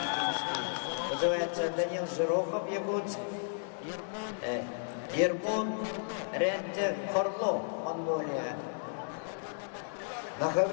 Вызывается Данил Жирохов, Якутск. Ермун Рентер Хорло, Монголия. На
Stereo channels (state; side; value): silent; right; digital silence